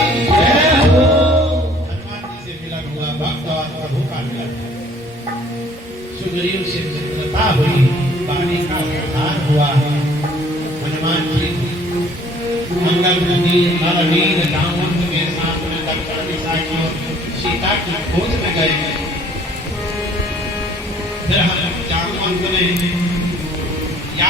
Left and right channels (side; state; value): both; normal; correlation 0.56